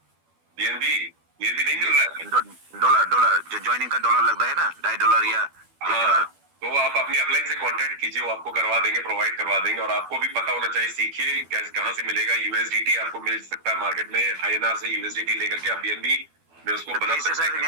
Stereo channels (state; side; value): late; left; 12 ms